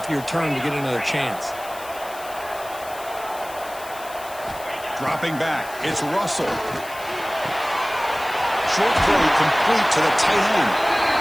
your turn to get another chance. Dropping back, it's Russell. Short throw complete to the tight end.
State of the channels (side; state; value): left; noise; hiss, 17 dB below the sound